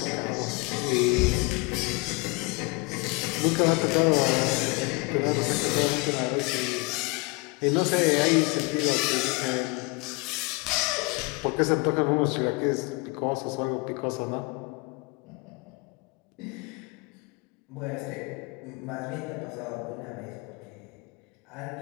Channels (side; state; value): right; quieter; 27.8 dB